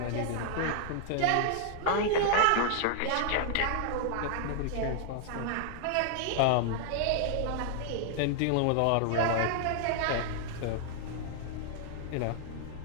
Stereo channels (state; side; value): different; both; correlation -0.01